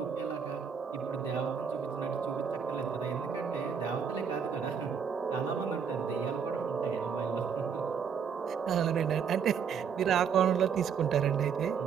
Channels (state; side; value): quieter; left; 6.9 dB